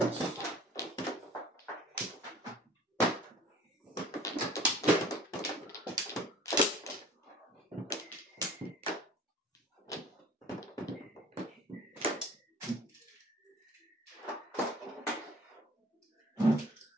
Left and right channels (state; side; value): normal; both; correlation 0.48